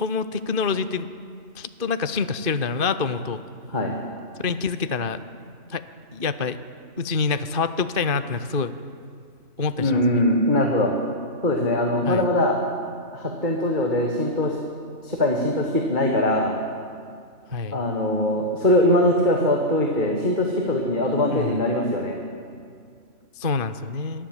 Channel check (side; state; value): left; late; 2.5 ms